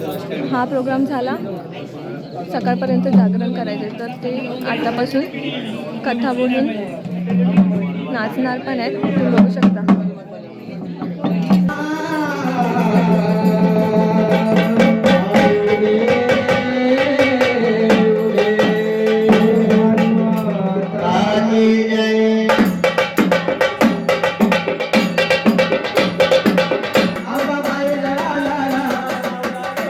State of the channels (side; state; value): both; identical; correlation 1.00